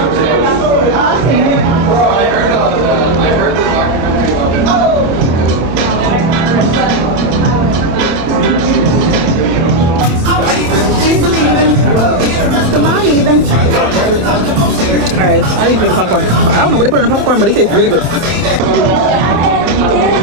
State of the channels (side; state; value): left; late; 27 ms